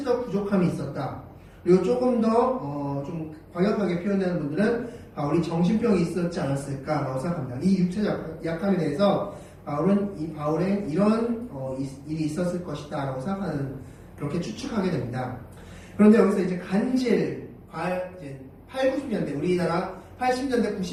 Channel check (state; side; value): identical; both; correlation 1.00